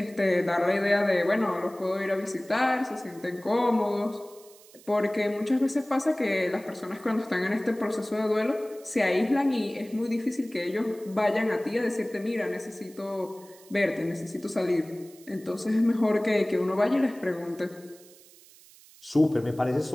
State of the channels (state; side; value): noise; right; hiss, 24 dB below the sound